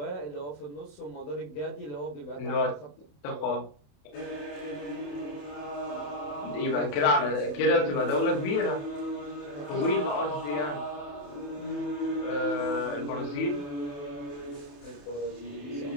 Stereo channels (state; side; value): late; right; 28 ms